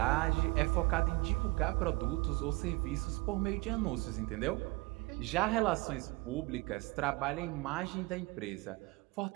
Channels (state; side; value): quieter; left; 23.5 dB